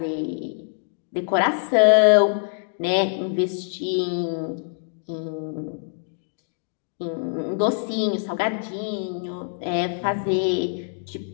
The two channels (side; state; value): right; silent; digital silence